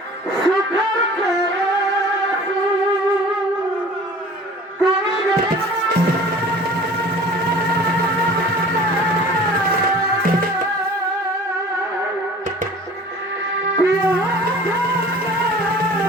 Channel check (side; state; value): both; normal; correlation 0.45